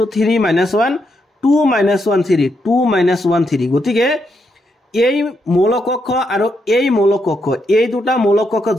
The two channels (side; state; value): both; normal; correlation 0.80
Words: 3 -1 2 -1 3 2 -1 3 গতিকে এই মৌলক কক্ষ আৰু এই মৌলক কক্ষ এই দুটা মৌলক কক্ষ